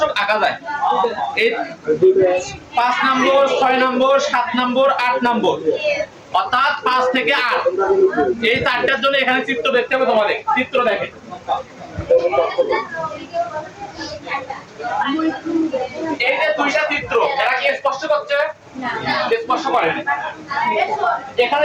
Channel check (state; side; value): identical; both; correlation 1.00